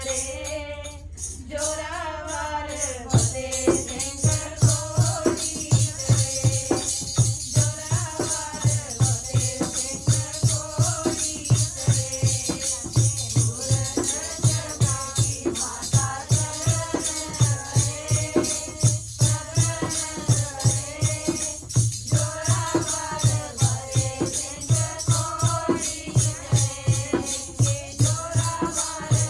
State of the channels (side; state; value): both; identical; correlation 1.00